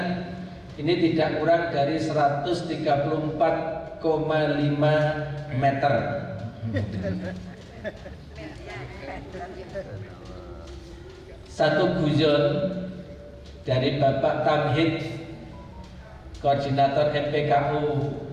ini tidak kurang dari 134,5 meter. Satu guyon dari Bapak Tamhid, Koordinator MPKU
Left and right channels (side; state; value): both; identical; correlation 1.00